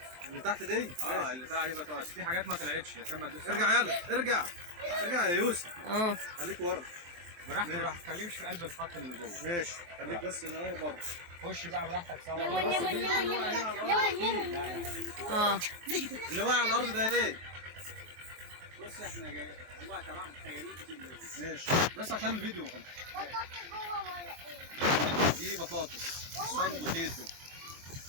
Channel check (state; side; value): late; left; 23 ms